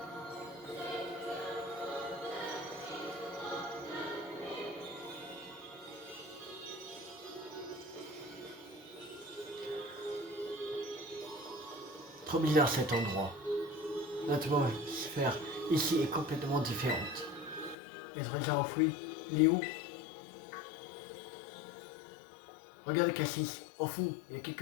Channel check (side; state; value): right; drops out; at 17.8 s